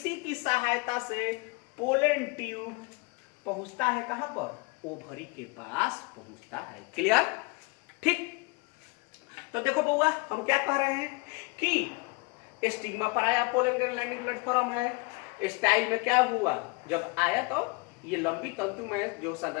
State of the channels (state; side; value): quieter; right; 28.2 dB